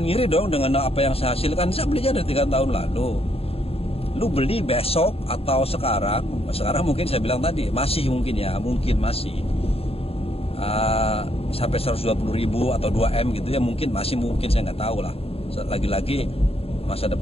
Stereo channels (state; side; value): late; right; 0.28 ms